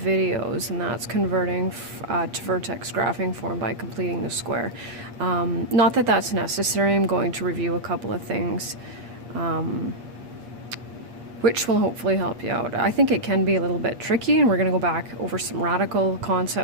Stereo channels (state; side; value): late; left; 8.5 ms